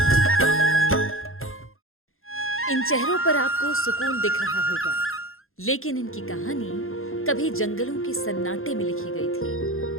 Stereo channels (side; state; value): right; late; 0.61 ms